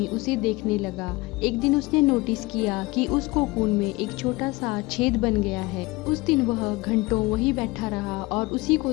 उसे देखने लगा। एक दिन उसने नोटिस किया कि उस कोकून में एक छोटा सा छेद बन गया है। उस दिन वह घंटों वहीं बैठा रहा और उसी को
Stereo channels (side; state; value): right; quieter; 22.3 dB